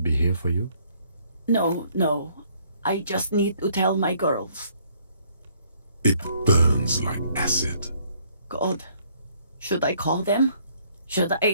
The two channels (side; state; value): both; inverted; correlation -0.65